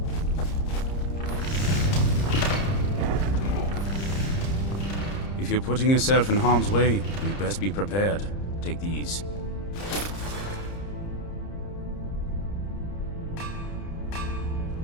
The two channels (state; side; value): late; right; 30 ms